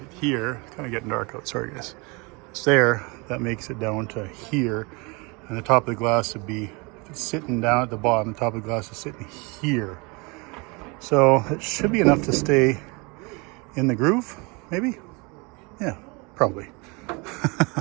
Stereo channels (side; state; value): left; quieter; 28.6 dB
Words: here, it's kind of getting dark out, sorry guys. It's there, that makes it down to here, and the top of the glass would be, if it's sitting down at the bottom, the top of the glass is sitting here. So it should be enough to stay in the groove, maybe? Yeah, probably.